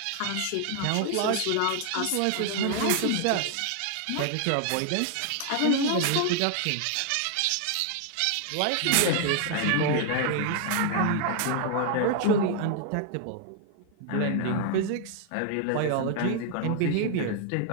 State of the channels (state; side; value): different; both; correlation 0.00